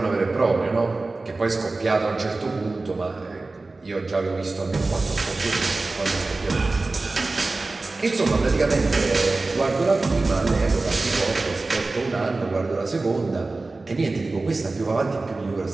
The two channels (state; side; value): quieter; left; 3.4 dB